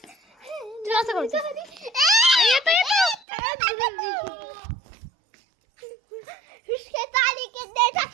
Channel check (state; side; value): drops out; left; at 3.2 s